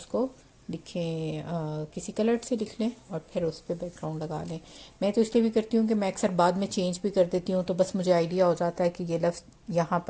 کو لکھیں, کسی کلر سے لکھ لیں اور پھر اس پہ بیک گراؤنڈ لگا لیں. میں تو اس لیے بھی کرتی ہوں کہ میں اکثر بعد میں چینج بھی کر دیتی ہوں, تو بس مجھے آئیڈیا ہو جاتا ہے کہ یہ لفظ یہاں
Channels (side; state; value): both; identical; correlation 1.00